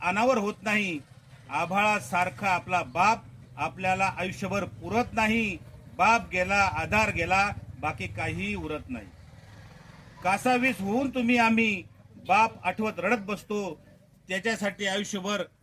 अनावर होत नाही. आभाळासारखा आपला बाप आपल्याला आयुष्यभर पुरत नाही. बाप गेला, आधार गेला, बाकी काही उरत नाही. कासावीस होऊन तुम्ही आम्ही बाप आठवत रडत बसतो. त्याच्यासाठी आयुष्यभर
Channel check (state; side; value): identical; both; correlation 1.00